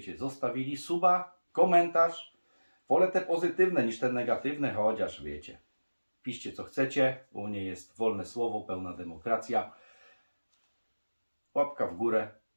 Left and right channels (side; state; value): both; inverted; correlation -1.00